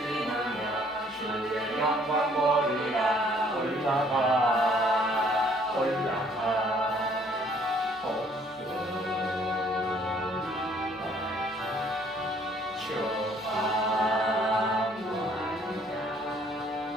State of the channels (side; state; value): both; normal; correlation 0.61